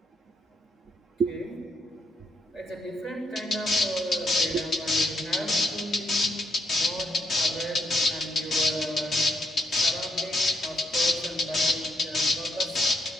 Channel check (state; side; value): normal; both; correlation 0.76